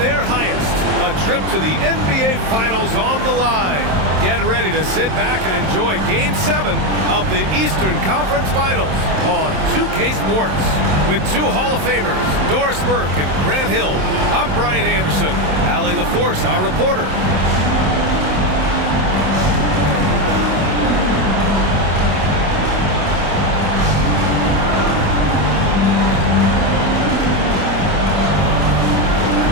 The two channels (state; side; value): late; left; 27 ms